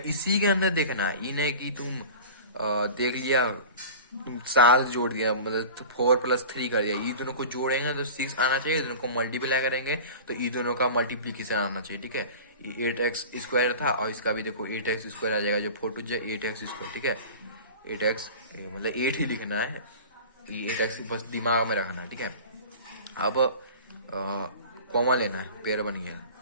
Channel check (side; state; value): both; inverted; correlation -0.37